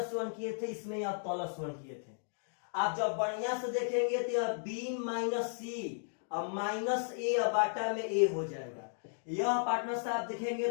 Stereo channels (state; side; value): silent; right; digital silence